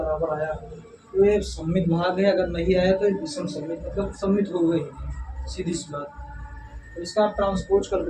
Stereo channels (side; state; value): both; identical; correlation 1.00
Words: आया तो ये सममित भाग है, अगर नहीं आया तो ये विषम सममित, मतलब सममित हो गई, सीधी सी बात। तो इसका आप ट्रांसपोज